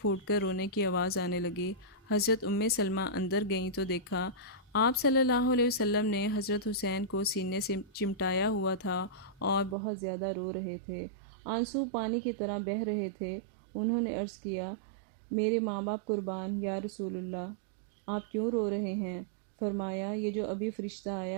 کر رونے کی آواز آنے لگی۔ حضرت سلمہ اندر گئیں تو دیکھا آپ صلی اللہ علیہ وسلم نے حضرت حسین کو سینے سے چمٹایا ہوا تھا اور بہت زیادہ رو رہے تھے، آنسو پانی کی طرح بہہ رہے تھے۔ انہوں نے عرض کیا، میرے ماں باپ قربان یا رسول اللہ، آپ کیوں رو رہے ہیں؟ فرمایا، یہ جو ابھی فرشتہ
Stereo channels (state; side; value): drops out; left; at 9.8 s